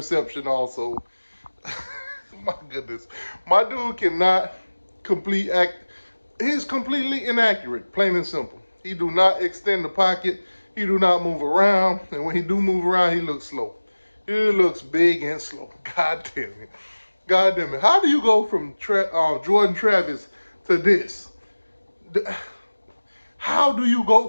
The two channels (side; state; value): both; inverted; correlation -1.00